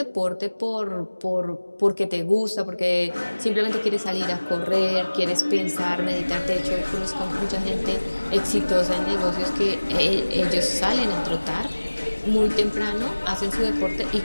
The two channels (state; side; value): inverted; both; correlation -1.00